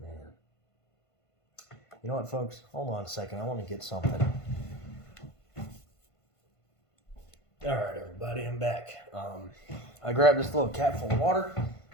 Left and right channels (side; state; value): right; late; 1.5 ms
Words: You know what, folks? Hold on a second. I want to get something. All right, everybody, I'm back. I grabbed this little cap full of water,